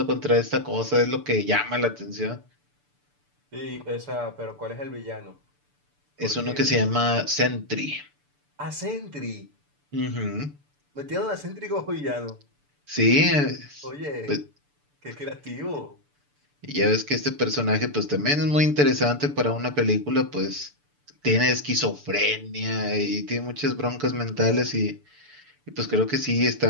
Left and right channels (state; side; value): late; left; 6.9 ms